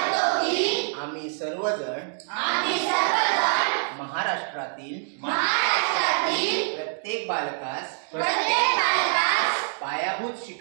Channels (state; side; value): silent; left; 61 dB below the other